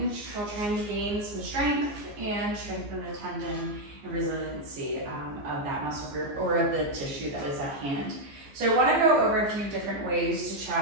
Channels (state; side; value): late; left; 14 ms